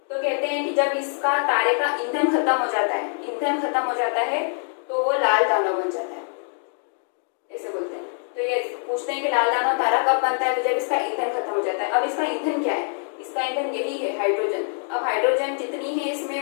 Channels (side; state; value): right; silent; 62 dB below the other